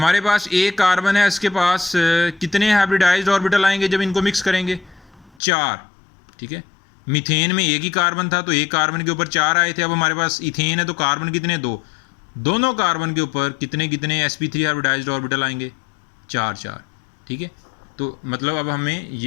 पास एक कार्बन है, इसके पास कितने हाइब्रिडाइज्ड ऑर्बिटल आएंगे जब इनको मिक्स करेंगे? 4, ठीक है। मीथेन में एक ही कार्बन था तो एक कार्बन के ऊपर 4 आए थे। अब हमारे पास इथेन है तो कार्बन कितने? 2। दोनों कार्बन के ऊपर कितने कितने sp3 हाइब्रिडाइज्ड ऑर्बिटल आएंगे? 4, ठीक है। तो मतलब अब हमें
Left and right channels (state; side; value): drops out; right; at 5.4 s